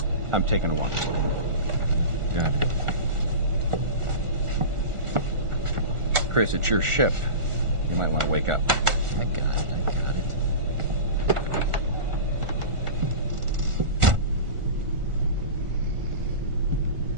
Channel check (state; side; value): late; left; 1.4 ms